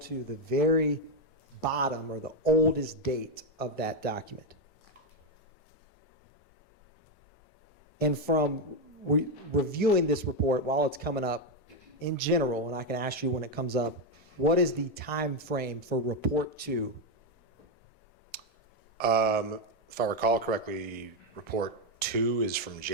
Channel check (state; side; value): normal; both; correlation 0.05